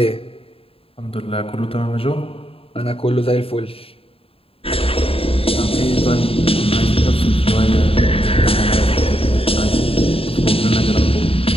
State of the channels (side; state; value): right; late; 0.27 ms